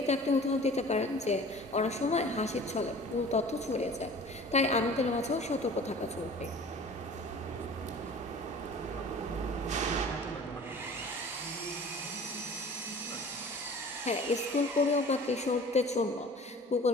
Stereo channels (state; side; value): normal; both; correlation 0.44